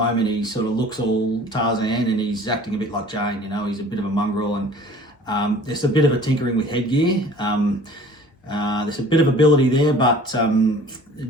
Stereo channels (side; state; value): both; normal; correlation 0.48